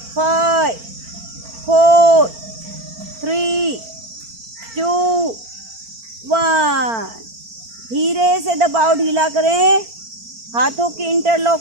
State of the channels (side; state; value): left; late; 4.4 ms